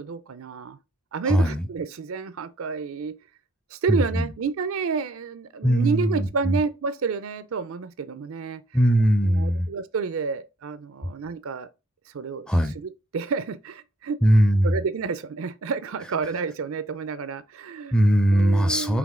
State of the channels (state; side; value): normal; both; correlation 0.69